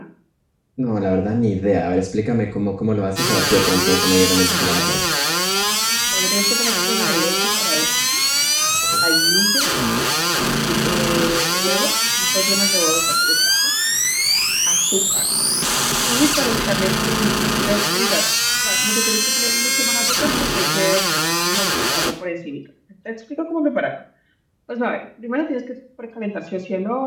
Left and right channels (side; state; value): both; identical; correlation 1.00